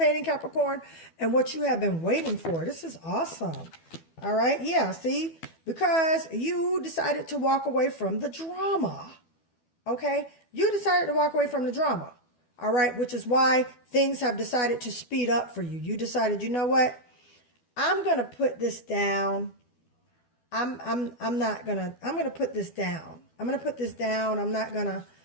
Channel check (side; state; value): right; late; 12 ms